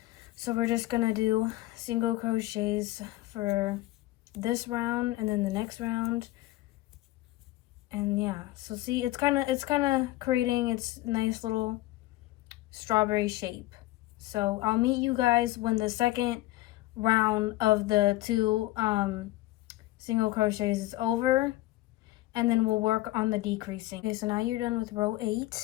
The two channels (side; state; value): right; quieter; 17.4 dB